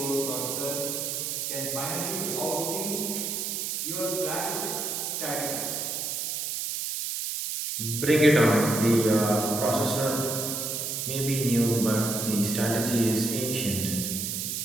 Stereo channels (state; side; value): noise; right; hiss, 2 dB below the sound